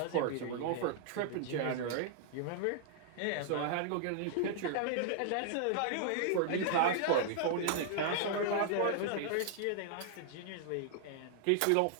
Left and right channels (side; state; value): both; different; correlation 0.00